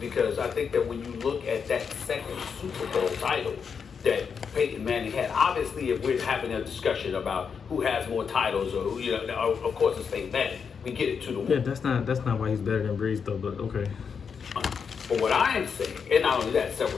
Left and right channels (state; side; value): quieter; right; 6.3 dB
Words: I think that when you look at that second Super Bowl title that Peyton Manning had, obviously if we're having a discussion about who has more titles or who, of course it's Peyton Manning. We get it to the Yeah, that's not why he's better than Brees though, but okay. But what I am saying, and not only that,